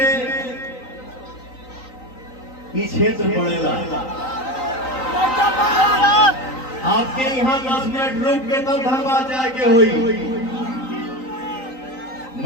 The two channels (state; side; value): late; right; 3.9 ms